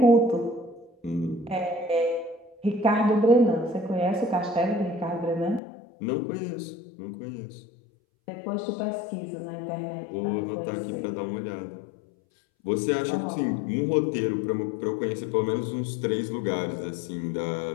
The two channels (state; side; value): drops out; right; at 5.6 s